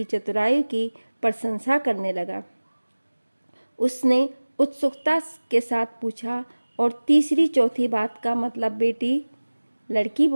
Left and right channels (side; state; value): both; inverted; correlation -1.00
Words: चतुराई की प्रशंसा करने लगा। उसने उत्सुकता के साथ पूछा, और तीसरी चौथी बात का मतलब बेटी? लड़की